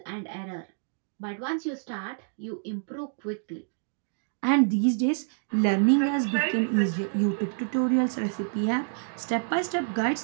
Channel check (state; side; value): silent; left; digital silence